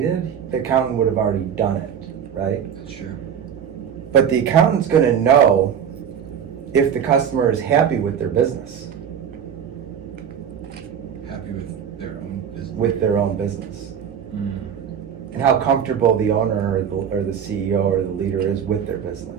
the accountant would have already done it, right? That's true. But the accountant's going to know if the customer is happy with their business, Happy with their own business. with their own business, and how comfortable the owner or the CEO or the leader is with their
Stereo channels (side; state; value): left; quieter; 8.2 dB